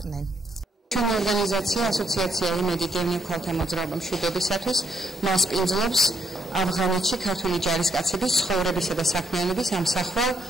ჩვენი ორგანიზაცია ასოციაცია იმედი დევნილ ქალთა მოძრაობა მშვიდობისათვის მასპინძლობს ავღანეთში ქართველი ჯარისკაცების ცხოვრებისა და საქმიანობის ამსახველ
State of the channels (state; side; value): normal; both; correlation 0.75